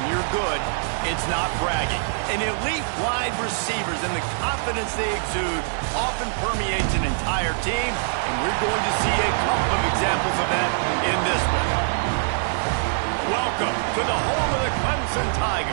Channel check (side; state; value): left; silent; 63 dB below the other